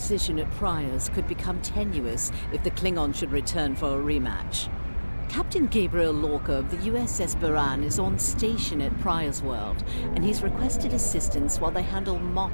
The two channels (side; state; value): both; inverted; correlation -1.00